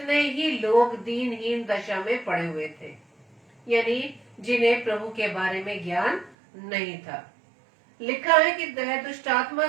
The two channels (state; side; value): drops out; left; at 6.4 s